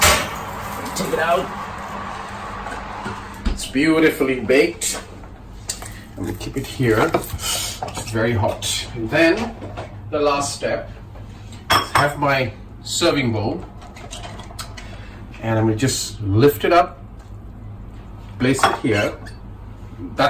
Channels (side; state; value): both; identical; correlation 1.00